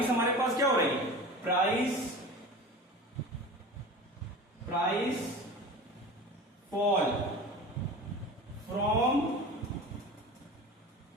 हमारे पास क्या हो रही है? Price fall from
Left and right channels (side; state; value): both; normal; correlation 0.34